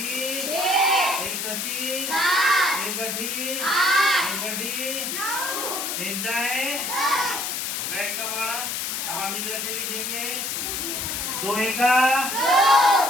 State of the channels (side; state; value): left; noise; hiss, 2 dB below the sound